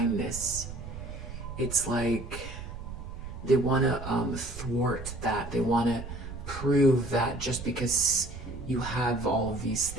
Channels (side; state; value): right; noise; rumble, 10 dB below the sound